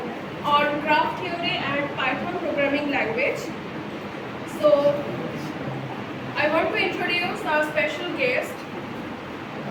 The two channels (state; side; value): identical; both; correlation 1.00